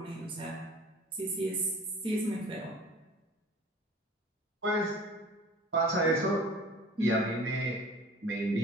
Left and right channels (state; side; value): normal; both; correlation 0.45